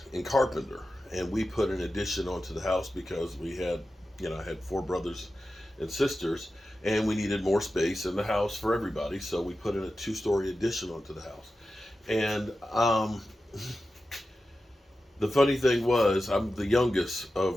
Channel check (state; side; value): normal; both; correlation 0.92